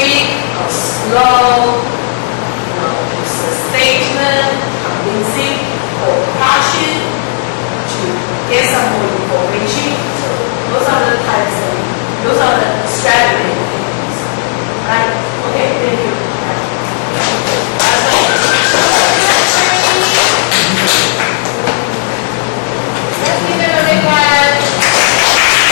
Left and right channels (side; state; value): right; silent; digital silence